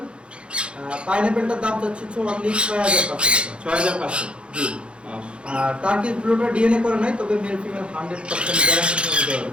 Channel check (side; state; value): left; late; 0.057 ms